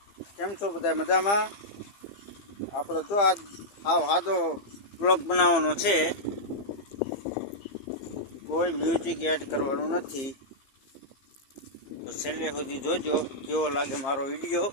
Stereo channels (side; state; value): right; late; 15 ms